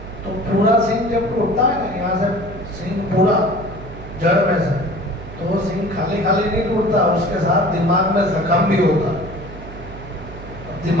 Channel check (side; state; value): right; noise; hum, 13 dB below the sound